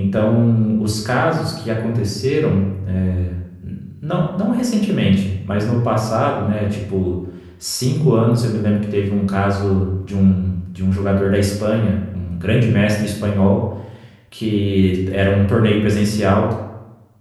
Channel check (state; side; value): identical; both; correlation 1.00